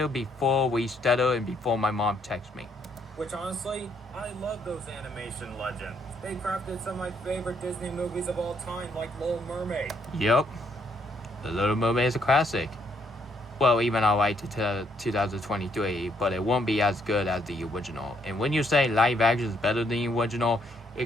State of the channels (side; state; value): both; normal; correlation 0.71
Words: before we stutter and before my mom texts me. Which honestly, I love those animation legends. They crafted some of my favorite Disney movies of all time, like Little Mermaid. Yep. The Little Mermaid is a classic. Well, even I like to 2023, but it won't be as good as the original. And when you say live action is better than the original,